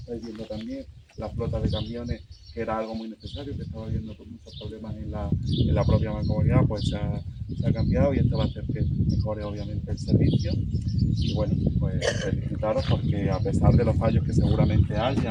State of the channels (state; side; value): identical; both; correlation 1.00